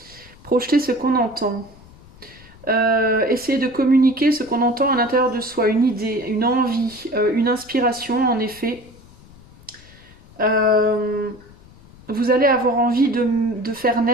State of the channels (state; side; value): noise; left; rumble, 24 dB below the sound